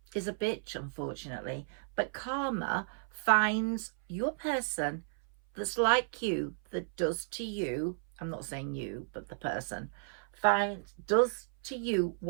is a bitch, unfortunately, but karma finds your person that's like you, that does to you, I'm not saying you, but the person, does to you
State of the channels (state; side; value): silent; left; 55 dB below the other